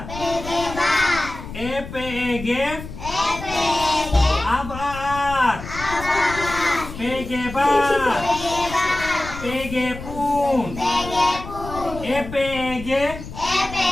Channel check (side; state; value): left; noise; rumble, 11 dB below the sound